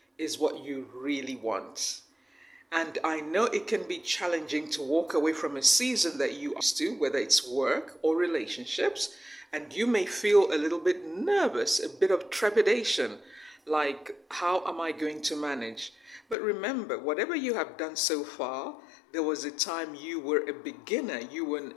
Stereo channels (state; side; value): drops out; right; at 16.4 s